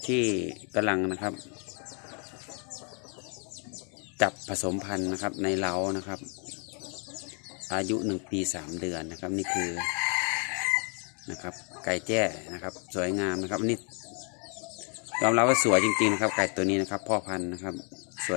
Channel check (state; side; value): quieter; right; 37.8 dB